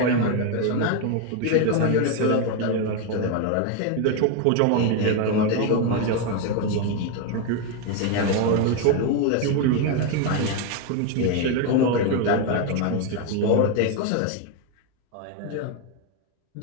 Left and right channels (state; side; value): different; both; correlation 0.02